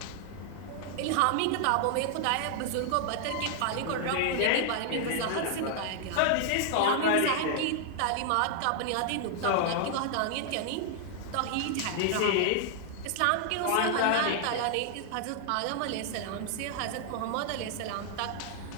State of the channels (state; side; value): different; both; correlation 0.00